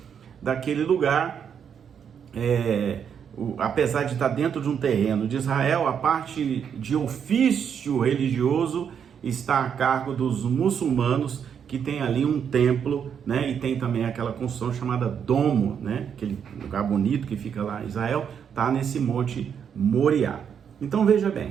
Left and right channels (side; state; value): left; quieter; 7.7 dB